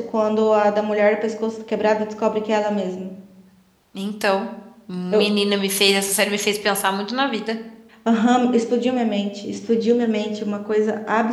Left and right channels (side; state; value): both; identical; correlation 1.00